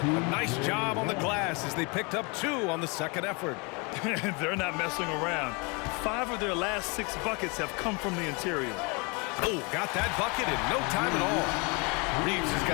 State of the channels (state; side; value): quieter; right; 30.4 dB